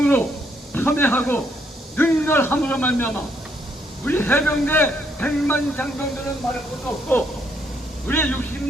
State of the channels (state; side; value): normal; both; correlation 0.72